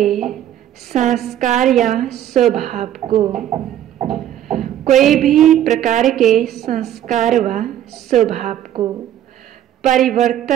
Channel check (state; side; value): quieter; left; 11.5 dB